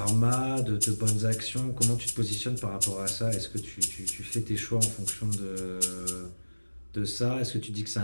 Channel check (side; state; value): both; inverted; correlation -1.00